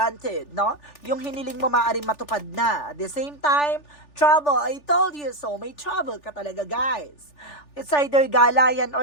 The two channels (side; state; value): right; late; 3.4 ms